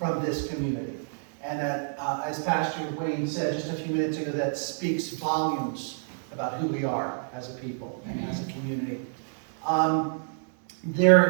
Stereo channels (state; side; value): silent; left; 59 dB below the other